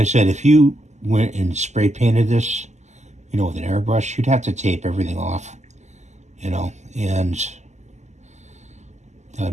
said, if you went and spray painted this, you know, with an airbrush, you'd have to tape everything off, you know, and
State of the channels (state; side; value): late; left; 0.33 ms